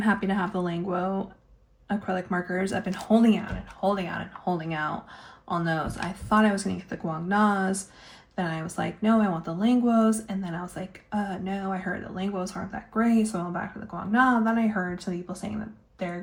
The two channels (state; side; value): identical; both; correlation 1.00